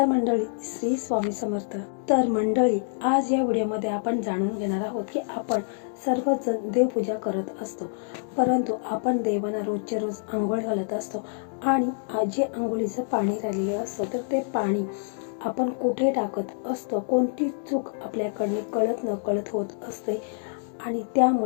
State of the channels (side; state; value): right; silent; digital silence